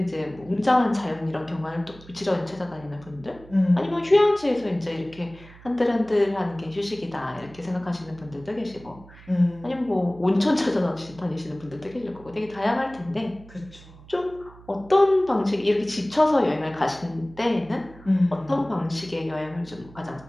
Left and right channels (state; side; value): noise; right; hum, 21 dB below the sound